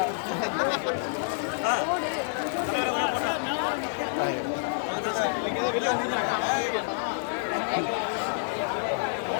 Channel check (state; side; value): silent; right; digital silence